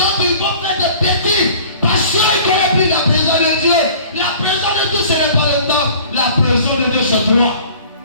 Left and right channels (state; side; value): inverted; both; correlation -0.47